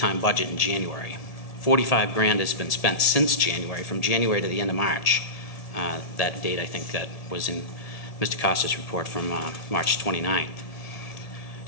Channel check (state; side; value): late; right; 1.8 ms